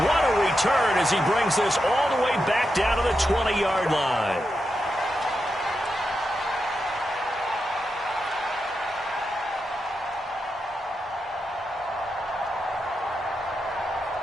what a return as he brings this all the way back down to the 20-yard line.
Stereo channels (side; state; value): both; normal; correlation 0.87